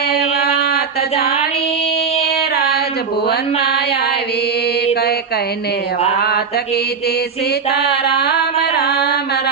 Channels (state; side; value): quieter; left; 5.7 dB